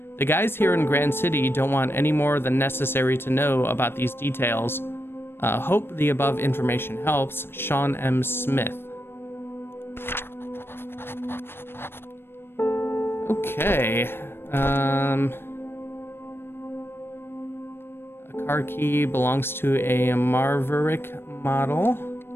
The guys here in Grand City don't want any more than necessary to know about these details. Hope the above information helps. Sean M. Smith. Okay. A car key belongs to a Maverick model.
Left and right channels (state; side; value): late; right; 0.11 ms